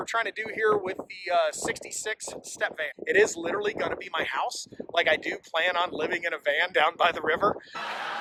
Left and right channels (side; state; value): both; identical; correlation 1.00